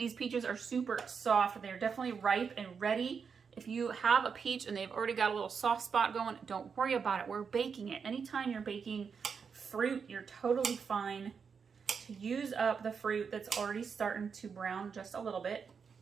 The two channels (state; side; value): quieter; left; 6.1 dB